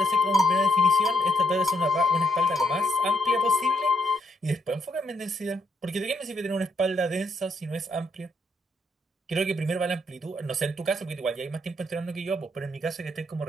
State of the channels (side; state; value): both; normal; correlation 0.75